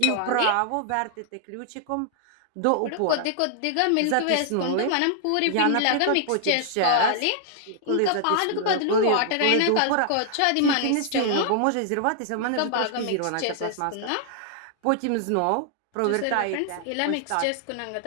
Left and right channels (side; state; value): both; different; correlation 0.00